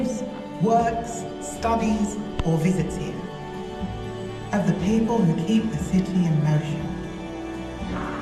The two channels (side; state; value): both; identical; correlation 1.00